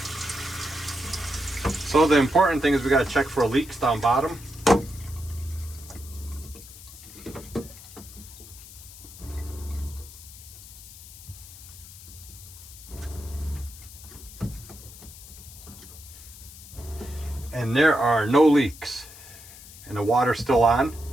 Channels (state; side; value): noise; left; hiss, 17 dB below the sound